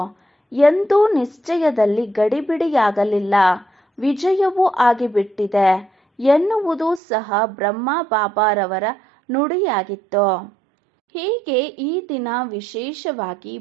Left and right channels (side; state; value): left; drops out; at 7.0 s